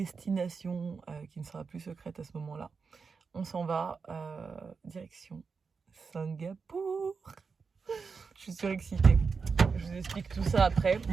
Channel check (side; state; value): left; quieter; 5.2 dB